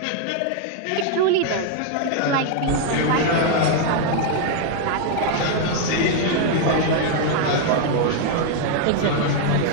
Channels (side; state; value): both; different; correlation 0.00